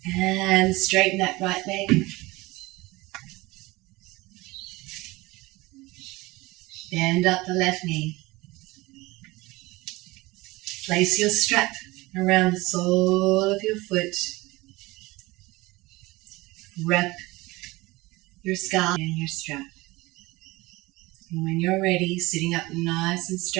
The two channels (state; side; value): quieter; left; 21.2 dB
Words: And straighten that right leg. Bend up the left knee. Place your strap around the sole of your foot. Wrap your scalp in your strap. And when you're ready, sitting up nice and